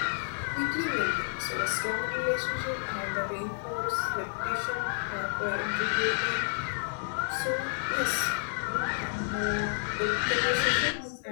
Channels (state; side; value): silent; right; digital silence